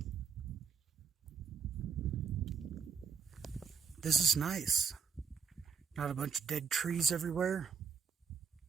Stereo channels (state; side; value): quieter; left; 6.2 dB